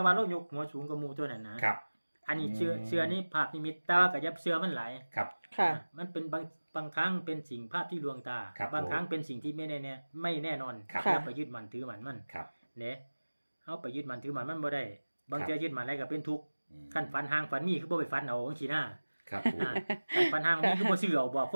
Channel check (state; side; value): inverted; both; correlation -1.00